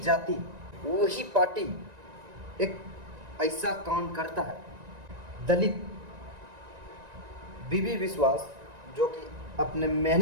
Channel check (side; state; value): left; late; 1.9 ms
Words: वही पार्टी एक ऐसा काम करता है। दलित बीबी बिस्वास जो कि अपने